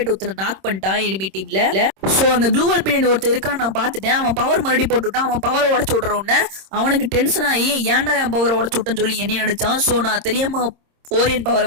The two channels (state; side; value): late; left; 26 ms